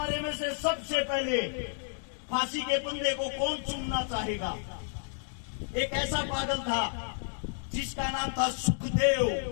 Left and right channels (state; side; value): silent; right; 57 dB below the other